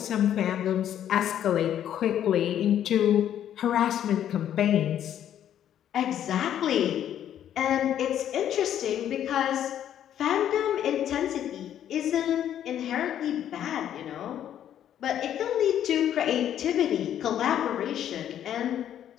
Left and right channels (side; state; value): right; quieter; 10.5 dB